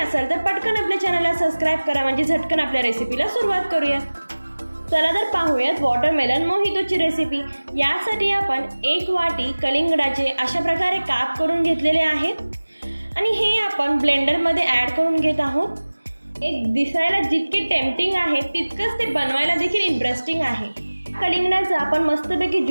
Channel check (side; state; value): both; inverted; correlation -1.00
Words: तर पटकन आपल्या चॅनलला सबस्क्राईब करा, म्हणजे झटकन आपल्या रेसिपीला सुरुवात करूया। चला तर पाहूयात वॉटरमेलन मोहितोची रेसिपी। यासाठी आपण 1 वाटी कलिंगडाचे अशा प्रकारे काप करून घेतलेले आहेत आणि हे आपण ब्लेंडरमध्ये ॲड करून घेत आहोत। एक दिसायला जितके टेम्पटिंग आहे तितकंच ते बनवायला देखील इंटरेस्टिंग आहे। कलिंगडाचा आपण मस्तपैकी